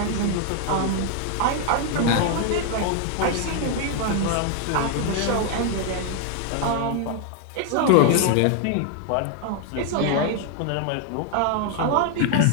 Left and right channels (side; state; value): both; different; correlation 0.00